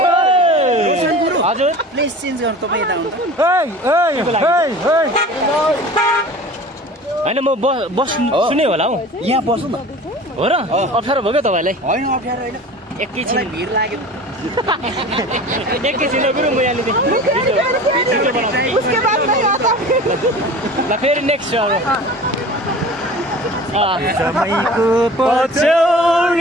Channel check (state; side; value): normal; both; correlation 0.40